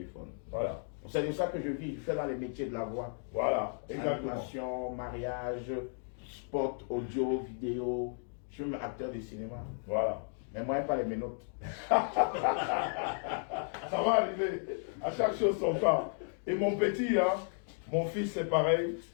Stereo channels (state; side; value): silent; right; 55 dB below the other